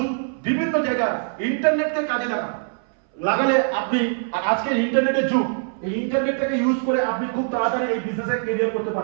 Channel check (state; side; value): silent; left; 64 dB below the other